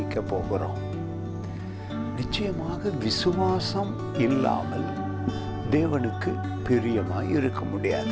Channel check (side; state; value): both; identical; correlation 1.00